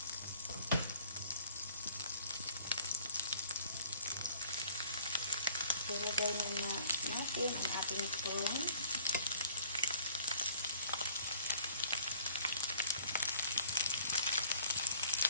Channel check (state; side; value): inverted; both; correlation -0.54